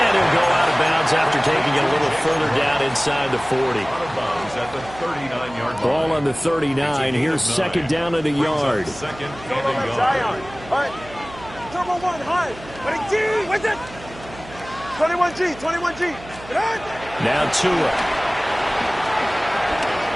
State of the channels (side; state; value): right; noise; hum, 17 dB below the sound